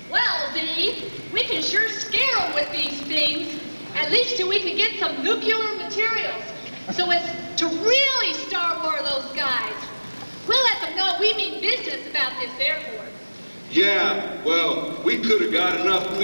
Well, Dee, we can sure scare them with these things. At least till we can get some nuclear materials. So as to really start war of those guys. We'll let them know we mean business about this airport. Yeah, well, we could have got enough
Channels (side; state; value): both; inverted; correlation -1.00